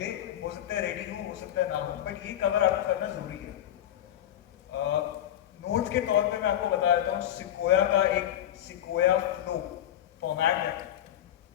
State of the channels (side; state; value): right; quieter; 11.6 dB